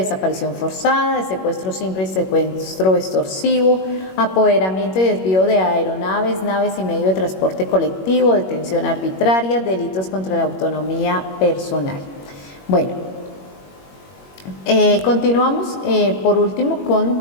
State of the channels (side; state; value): right; late; 21 ms